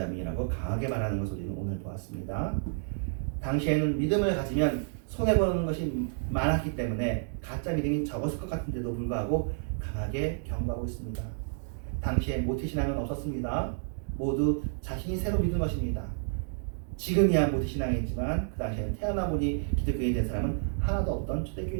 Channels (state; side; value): silent; left; digital silence